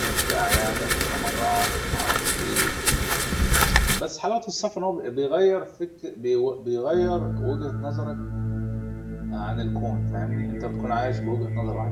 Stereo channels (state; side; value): identical; both; correlation 1.00